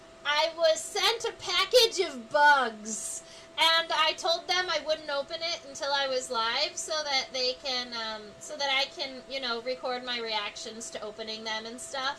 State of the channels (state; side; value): identical; both; correlation 1.00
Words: was sent a package of bugs. And I told them I wouldn't open it until I was live so that they can, so that I can, you know, record my reactions to opening them and